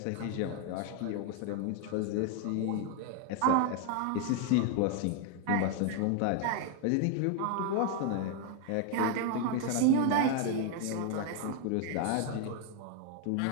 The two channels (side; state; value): both; different; correlation 0.00